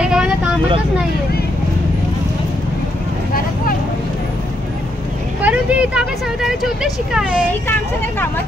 मला कामातच नाहीये। परंतु इथं आपल्या संविधानाचे उद्देश काय आहे? ही काम सगळ्या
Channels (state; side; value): normal; both; correlation 0.78